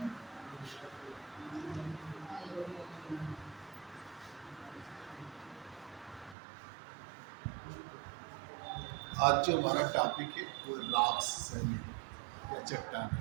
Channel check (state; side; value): drops out; left; at 6.4 s